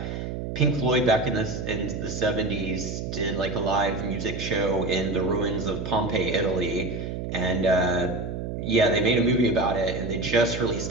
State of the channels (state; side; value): noise; right; hum, 5 dB below the sound